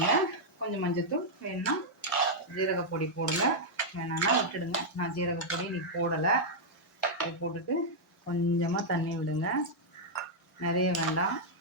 கொஞ்சம் மஞ்சத்தூள் வேணும்னா ஜீரகப்பொடி போடுங்க, வேணான்னா விட்டுடுங்க. நான் ஜீரகப்பொடி இன்றைக்கி போடலை. இது போட்டுட்டு கொஞ்சமாக தண்ணி விடுங்க, நிறைய வேண்டாம்.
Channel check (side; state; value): both; normal; correlation -0.05